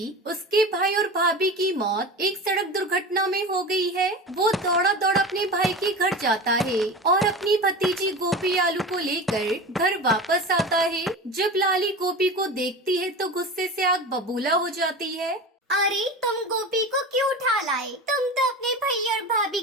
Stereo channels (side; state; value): both; normal; correlation 0.30